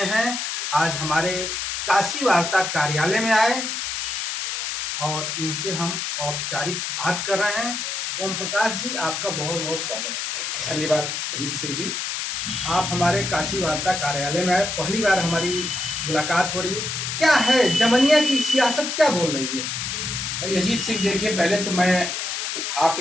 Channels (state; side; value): noise; left; hiss, 3 dB below the sound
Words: हैं। आज हमारे काशी वार्ता कार्यालय में आए और इनसे हम औपचारिक बात कर रहे हैं। ओम प्रकाश जी, आपका बहुत बहुत स्वागत है। धन्यवाद अजीत सिंह जी। आप हमारे काशी वार्ता कार्यालय में आए, पहली बार हमारी मुलाकात हो रही है। क्या है जमनिया की सियासत, क्या बोल रही है? भाई अजीत सिंह, देखिए, पहले तो मैं